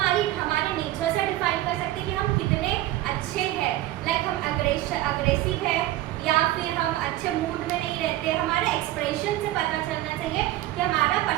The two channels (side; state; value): left; quieter; 15.4 dB